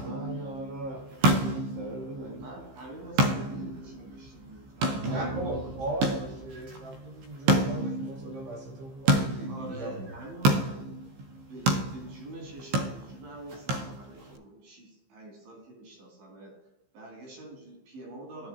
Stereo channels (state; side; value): late; left; 15 ms